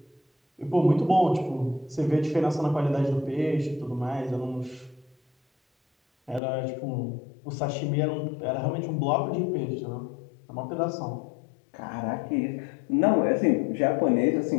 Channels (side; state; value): right; drops out; at 6.4 s